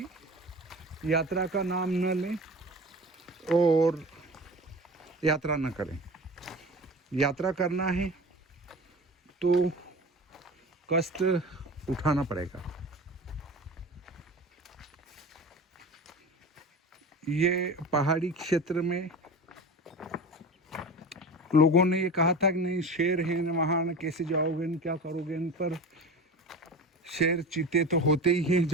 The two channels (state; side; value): normal; both; correlation 0.33